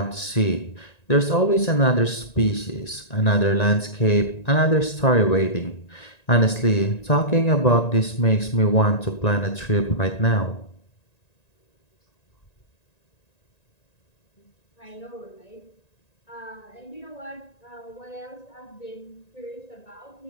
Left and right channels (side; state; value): right; late; 1.9 ms